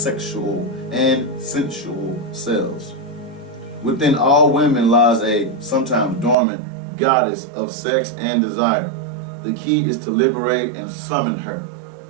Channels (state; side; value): drops out; left; at 6.4 s